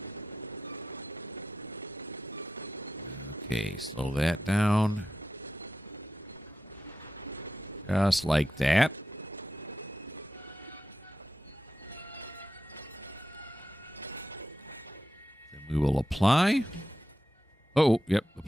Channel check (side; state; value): both; normal; correlation 0.89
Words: Okay, slow that down. Just like that. Then we will apply. Oh, yep,